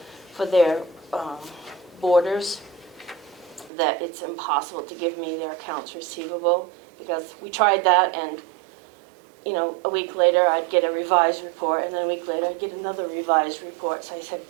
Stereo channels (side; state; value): left; drops out; at 3.7 s